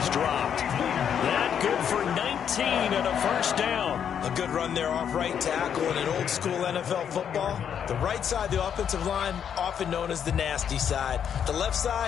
dropped. That good for 19 and a first down. A good run there off right tackle in an old school NFL football. The right side, the offensive line, often known as the nasty side. The left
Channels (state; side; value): quieter; right; 8.3 dB